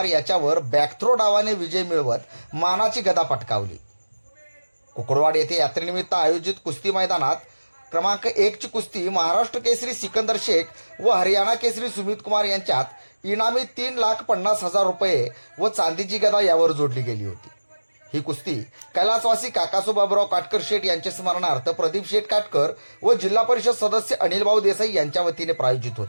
याच्यावर बॅकथ्रो डावाने विजय मिळवत मानाची गदा पटकावली. कुकडवाड येथे यात्रेनिमित्त आयोजित कुस्ती मैदानात क्रमांक 1 ची कुस्ती महाराष्ट्र केसरी सिकंदर शेख व हरियाणा केसरी सुमित कुमार यांच्यात इनामी 3,50,000 रुपये व चांदीची गदा यावर जोडली गेली होती. ही कुस्ती कैलासवासी काकासू बाबूराव काटकर शेठ यांच्या स्मरणार्थ प्रदीप शेठ काटकर व जिल्हा परिषद सदस्य अनिलभाऊ देसाई यांच्या वतीने प्रायोजित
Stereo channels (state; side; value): inverted; both; correlation -1.00